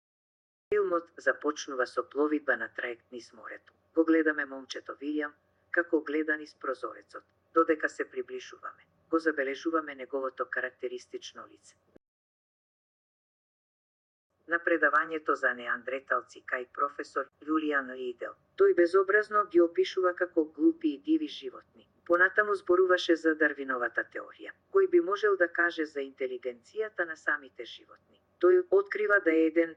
Филмот започнува со пловидба на траект низ морето. Го гледаме момчето Вилијам, како гледа низ прозорецот. Додека се приближуваме, го забележуваме неговото карактеристично лице. На предавањето за неандреталци кај професор Јулијан Ридел, тој безобразно ги опишува како глупи и диви животни. Понатаму зборуваше за Дарвиновата теорија, кој би можел да каже за интелигенцијата на самите животни. Тој открива да е еден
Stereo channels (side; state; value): both; identical; correlation 1.00